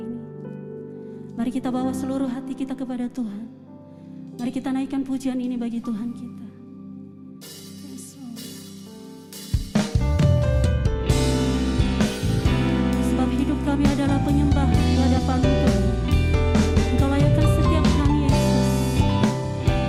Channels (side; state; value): both; identical; correlation 1.00